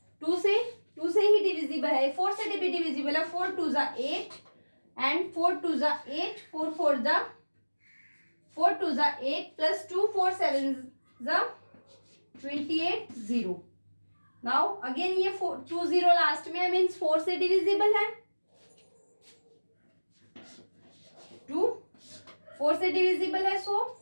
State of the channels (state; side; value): inverted; both; correlation -1.00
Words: 2 से ही डिविजिबल है, 4 से भी डिविजिबल है. 4 2 जा 8 एंड 4 2 जा 8, 4 4 जा 4 2 जा 8 प्लस 2 4 7 जा 28 0. नाउ अगेन ये 2 0 लास्ट में है, मीन्स 4 से डिविजिबल है, 2 4 से डिविजिबल है. सो